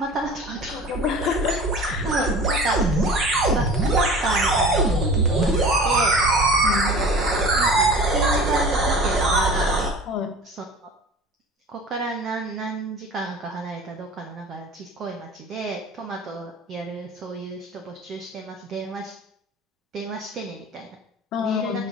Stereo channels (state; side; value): normal; both; correlation 0.40